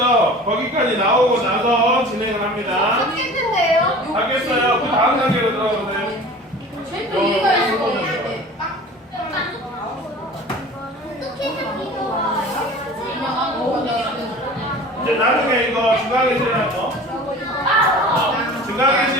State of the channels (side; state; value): both; normal; correlation 0.41